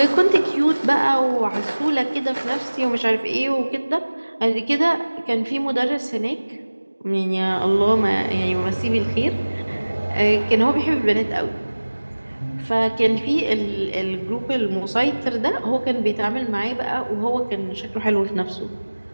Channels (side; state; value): both; inverted; correlation -1.00